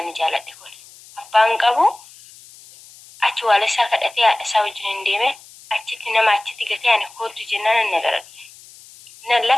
jaaladhe kun. Abbaan qabu achi waala isaa kadhatee haadha isaa wajjin hin deeme achitti nama achitti gatee ani kootu jennaan na bira dhufe. Nan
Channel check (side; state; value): left; noise; hiss, 22 dB below the sound